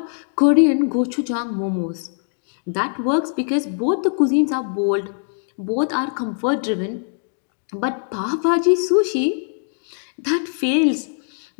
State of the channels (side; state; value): right; silent; 64 dB below the other